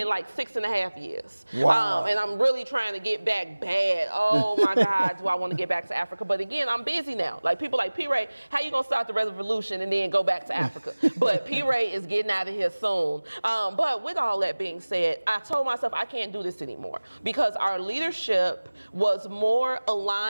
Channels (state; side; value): inverted; both; correlation -1.00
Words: like 6.5 years. Wow. And I'm really trying to get back bad. Oh my God, do I want to get back to Africa? But again, I'm busy now. Like people like P-Ray, how you gonna start the revolution and then go back to Africa? But P-Ray is getting out of here soon. But with all that being said, I told myself I can't do this anymore because our leadership was more